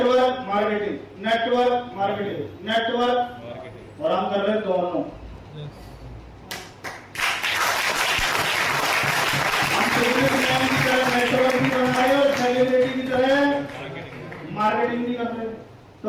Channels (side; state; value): both; identical; correlation 1.00